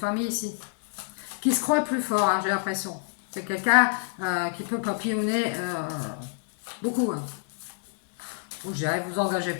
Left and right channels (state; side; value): silent; right; digital silence